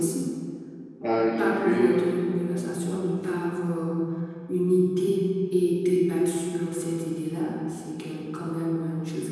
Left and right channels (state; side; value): identical; both; correlation 1.00